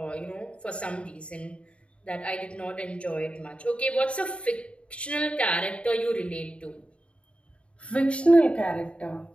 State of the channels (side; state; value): right; late; 0.060 ms